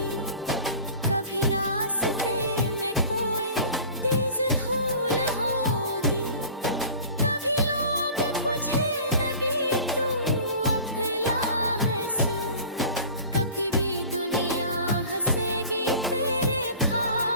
कभी रास्ते में कोई तेज धूल होगी। कभी लोग पूछे लगी तू अफला है सर, कभी भी दुनिया हंसेगी तेरे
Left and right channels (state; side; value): inverted; both; correlation -0.42